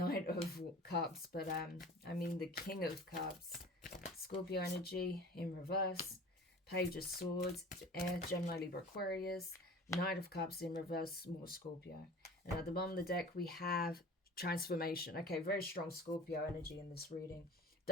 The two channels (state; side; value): normal; both; correlation 0.40